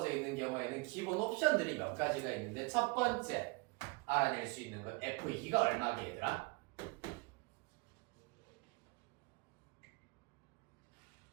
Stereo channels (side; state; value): left; quieter; 28.3 dB